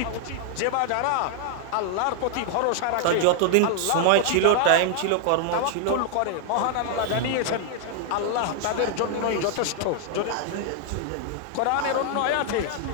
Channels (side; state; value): both; different; correlation 0.00